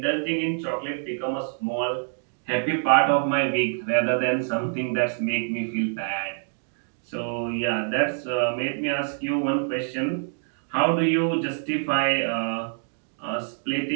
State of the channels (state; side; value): silent; left; digital silence